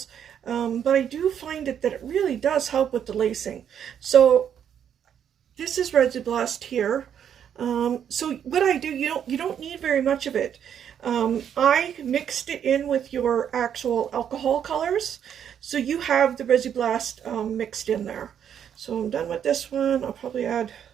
but I do find that it really does help with the lacing. So this is Resi-Blast here. So what I do, you don't need very much of it. I mixed it in with your actual alcohol colors, so you have the Resi-Blast mixed in there. So I'm done with this one. I'll probably add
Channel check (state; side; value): quieter; left; 8.9 dB